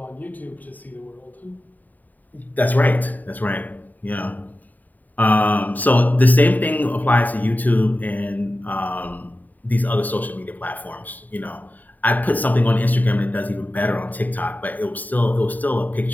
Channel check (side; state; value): right; late; 0.083 ms